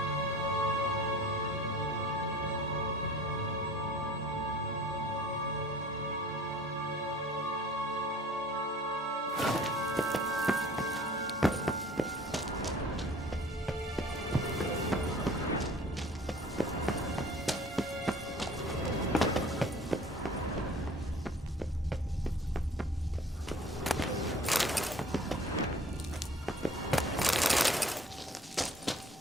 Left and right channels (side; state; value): both; normal; correlation 0.48